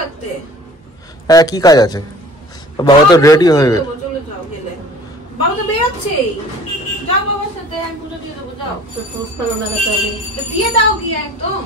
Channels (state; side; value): normal; both; correlation 0.48